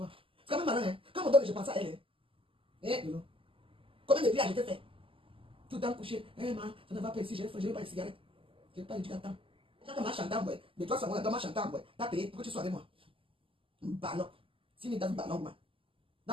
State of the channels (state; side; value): late; left; 0.26 ms